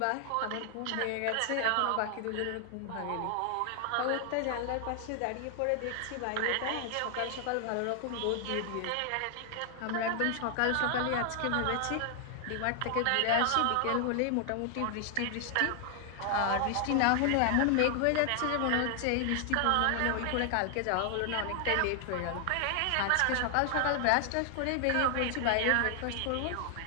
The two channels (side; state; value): both; different; correlation 0.00